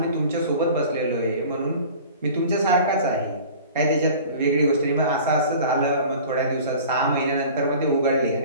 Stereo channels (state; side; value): inverted; both; correlation -0.42